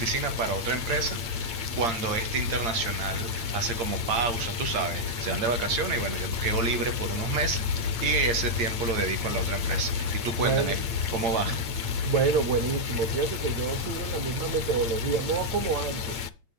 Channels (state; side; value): late; left; 8.7 ms